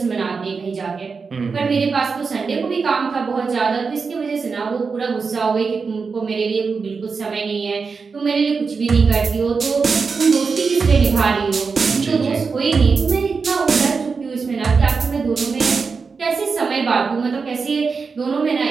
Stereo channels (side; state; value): left; quieter; 5.0 dB